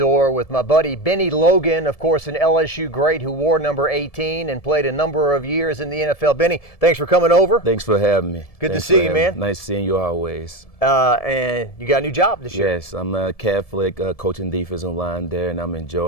with my buddy Bennie Logan, of course an LSU great who wore number 18 and played a number of years in the NFL. Bennie, thanks for coming over. Thanks for having me. Good to see you, man. Nice seeing you always. And you got a new job this year. Yes, I'm a Catholic coaching defensive line there, and I'm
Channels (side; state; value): right; late; 1.7 ms